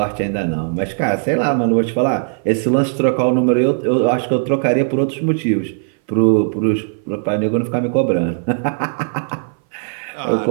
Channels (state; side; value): silent; left; 59 dB below the other